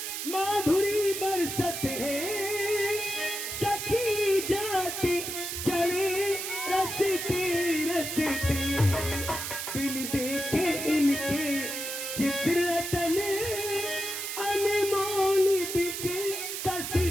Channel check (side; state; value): right; noise; hiss, 5 dB below the sound